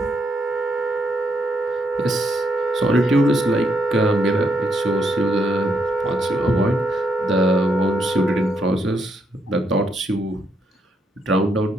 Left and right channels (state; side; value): normal; both; correlation 0.77